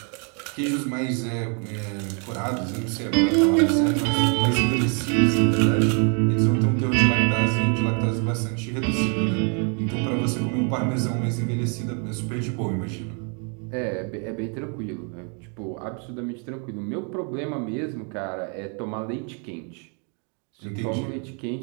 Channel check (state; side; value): quieter; left; 39.0 dB